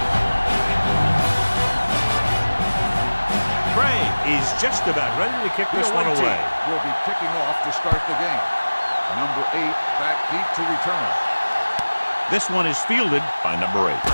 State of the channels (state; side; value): inverted; both; correlation -1.00